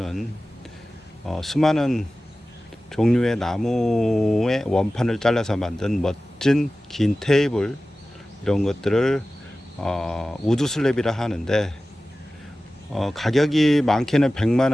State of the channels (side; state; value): both; normal; correlation 0.96